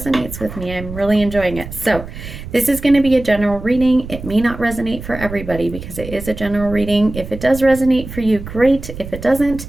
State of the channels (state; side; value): noise; right; rumble, 11 dB below the sound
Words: with me. I'm really enjoying it. So this is going to be a general reading. It may not resonate for everybody because it is a general reading. If it does resonate for you, great. If it doesn't,